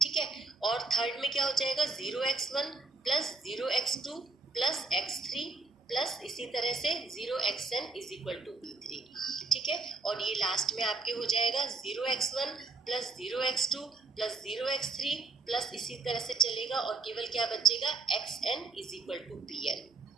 ठीक है, और थर्ड में क्या हो जाएगा, 0x1 plus 0x2 plus x3 plus इसी तरह से 0xn is equal to B3। ठीक है, और ये लास्ट में आपके हो जाएगा 0x1 plus 0x2 plus 0x3 plus इसी तरह से चलेगा और केवल क्या बचेगा, xn is equal to Bn।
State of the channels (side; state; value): left; quieter; 3.9 dB